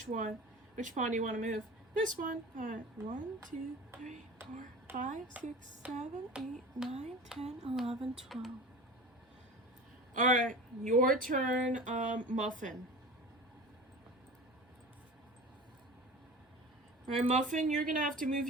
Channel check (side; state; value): both; normal; correlation 0.36